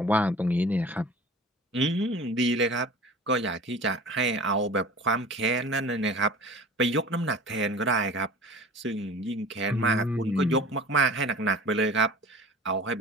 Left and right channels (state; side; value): normal; both; correlation 0.41